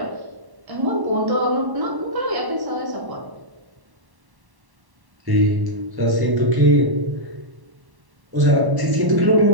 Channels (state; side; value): late; left; 1.1 ms